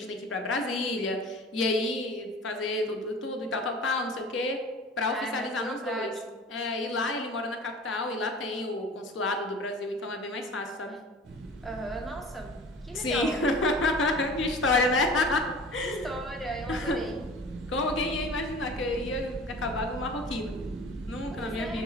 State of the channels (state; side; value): normal; both; correlation 0.41